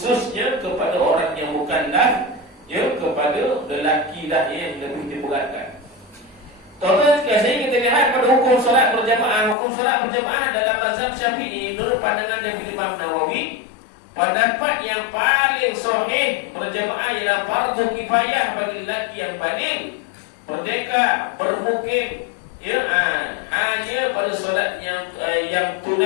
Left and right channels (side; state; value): right; drops out; at 9.6 s